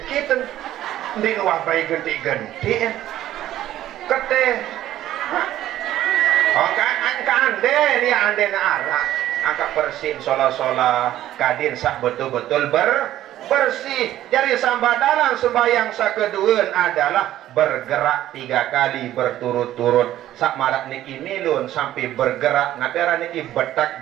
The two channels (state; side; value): quieter; left; 13.2 dB